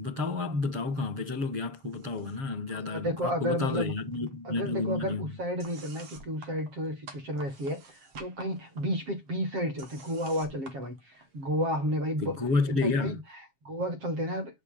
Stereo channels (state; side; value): late; left; 7.4 ms